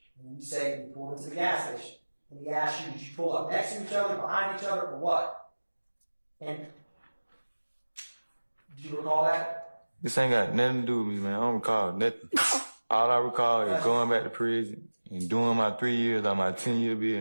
And you say you pulled into the gas station. And he asked you, did you pull up next to each other, behind each other, or what? And do you recall that? This ain't got nothing to do with me, man. I don't recall nothing. All I recall is going back to prison and doing my 3 years on my 10-year bid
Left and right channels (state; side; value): inverted; both; correlation -1.00